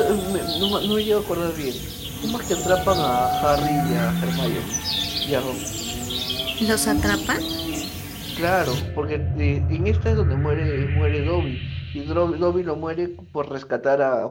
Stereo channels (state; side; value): identical; both; correlation 1.00